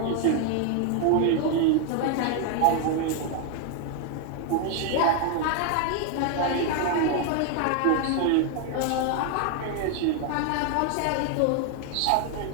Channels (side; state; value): both; different; correlation 0.00